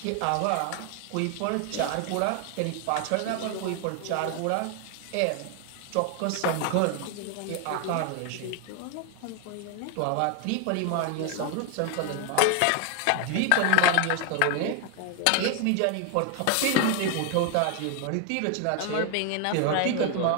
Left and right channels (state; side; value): different; both; correlation 0.01